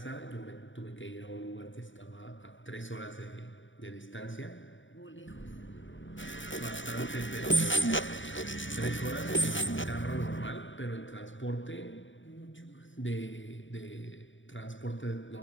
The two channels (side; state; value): right; late; 0.55 ms